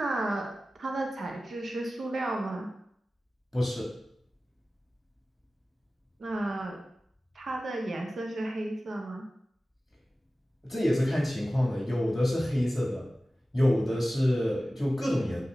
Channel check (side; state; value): both; normal; correlation 0.96